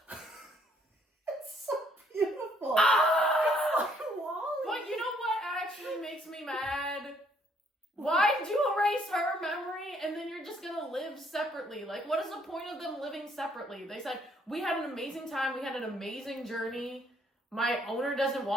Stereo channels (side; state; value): both; normal; correlation 0.66